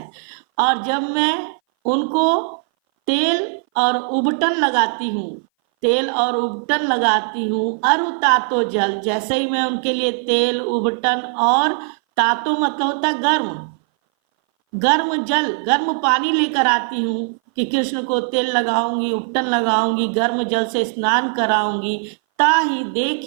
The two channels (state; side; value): silent; left; 60 dB below the other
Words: और जब मैं उनको तेल और उबटन लगाती हूँ, तेल और उबटन लगाती हूँ, अरु तातो जल, जैसे ही मैं उनके लिए तेल, उबटन और तातो मतलब होता है गर्म, गर्म जल, गर्म पानी लेकर आती हूँ कि कृष्ण को तेल लगाऊंगी, उपटन लगाऊंगी, गर्म जल से स्नान कराऊंगी, ताही